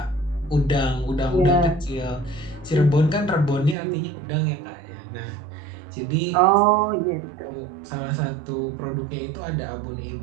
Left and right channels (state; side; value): drops out; left; at 3.8 s